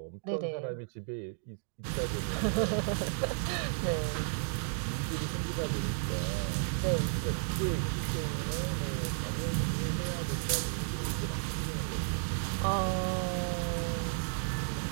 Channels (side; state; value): left; silent; digital silence